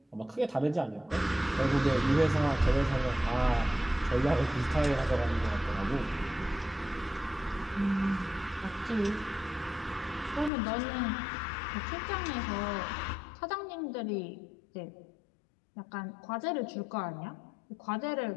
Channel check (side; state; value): right; drops out; at 10.5 s